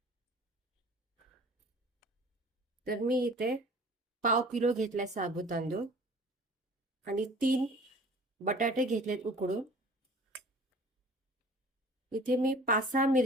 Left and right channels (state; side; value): normal; both; correlation 0.46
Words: तर मी इथे पाव किलो घेतलाय साबू तांदूळ आणि 3 बटाटे घेतलेत उकडून. इथे मी 5-6